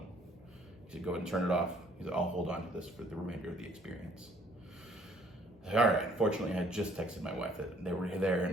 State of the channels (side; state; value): both; normal; correlation 0.61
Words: He said, "Go ahead and turn it off." He said, "I'll hold on to this for the remainder of the experience." I said, "All right." Fortunately, I had just texted my wife that they were there,